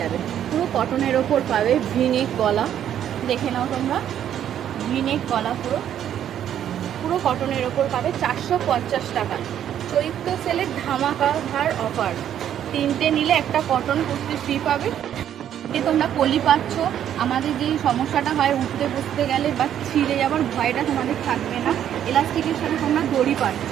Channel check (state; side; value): quieter; left; 10.2 dB